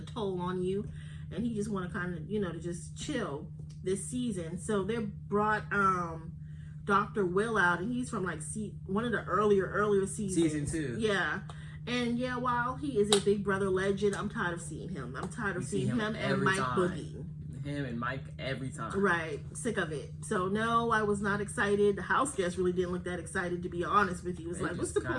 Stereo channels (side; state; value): both; identical; correlation 1.00